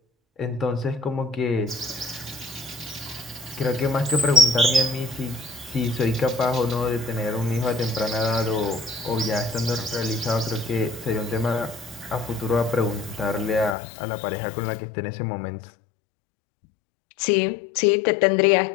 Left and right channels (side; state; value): right; drops out; at 13.8 s